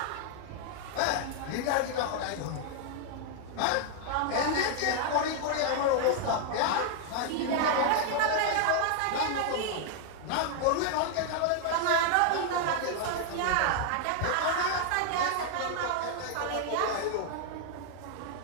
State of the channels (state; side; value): different; both; correlation 0.00